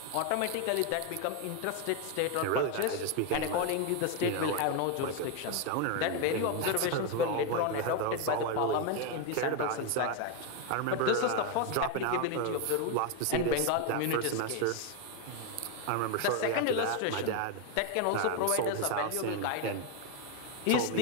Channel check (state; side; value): different; both; correlation 0.02